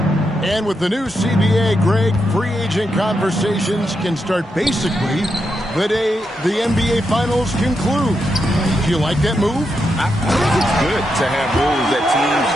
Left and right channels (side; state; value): both; normal; correlation 0.84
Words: And with the new CBA, Greg, free agent conversations can start basically the day the NBA Finals conclude. Do you like that move? I think it's good to have rules that teams